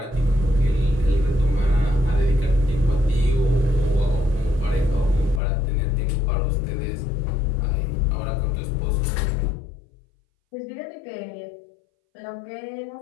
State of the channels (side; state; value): right; drops out; at 5.4 s